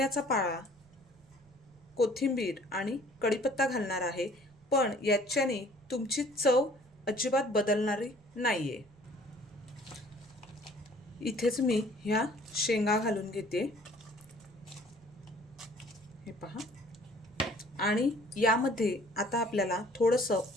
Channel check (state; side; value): noise; right; rumble, 29 dB below the sound